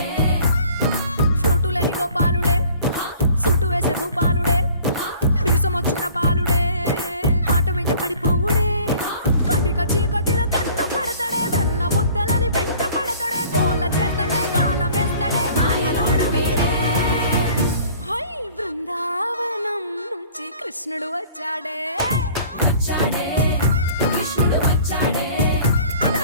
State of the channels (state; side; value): inverted; both; correlation -0.50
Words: ఫ్లూటులేని గోపాలుడే సుటు వేసే భూపాలుడే మీసమొచ్చిన పాలుడే మాట వెంట పడిపోవుడే కటిక చీకటిలో కన్ను కడతాడే వెన్న ముద్దలని వెంట పడతాడే కోల చేస్తాడే కాలమేస్తాడే మాయలోడు వీడే హై బృందావనం నుంచి కృష్ణుడు వచ్చాడే కృష్ణుడు వచ్చాడే